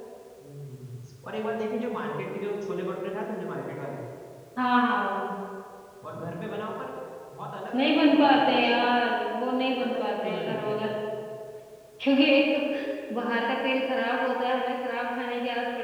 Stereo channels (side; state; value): both; identical; correlation 1.00